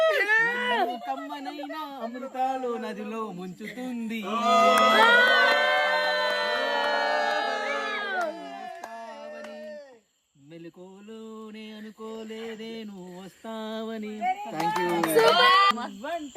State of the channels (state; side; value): identical; both; correlation 1.00